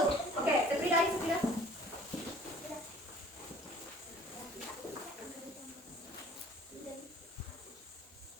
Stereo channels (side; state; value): both; normal; correlation 0.52